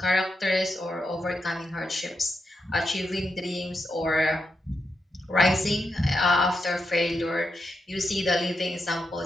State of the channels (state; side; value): normal; both; correlation 0.85